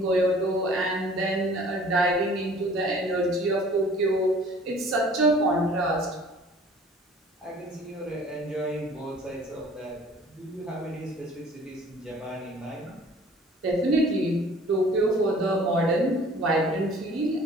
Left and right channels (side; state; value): both; normal; correlation 0.51